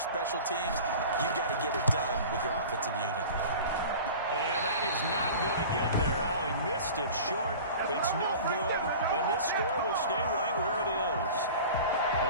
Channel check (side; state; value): both; inverted; correlation -0.38